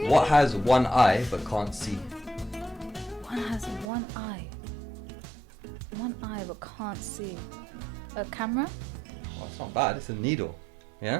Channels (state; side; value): drops out; left; at 3.9 s